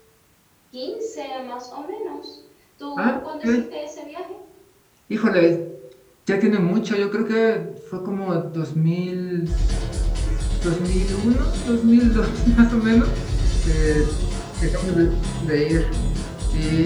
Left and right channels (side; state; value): both; identical; correlation 1.00